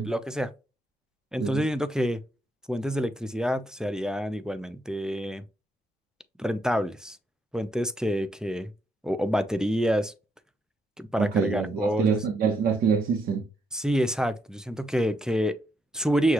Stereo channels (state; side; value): normal; both; correlation 0.78